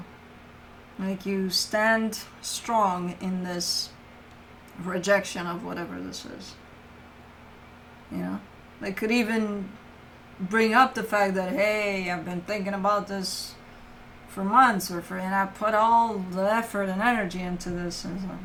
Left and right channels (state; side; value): identical; both; correlation 1.00